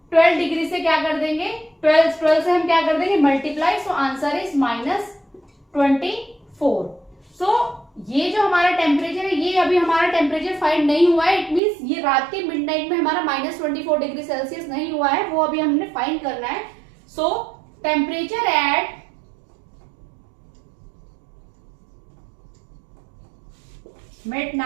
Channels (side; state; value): left; drops out; at 11.6 s